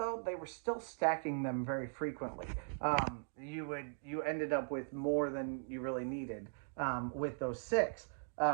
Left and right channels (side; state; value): left; silent; digital silence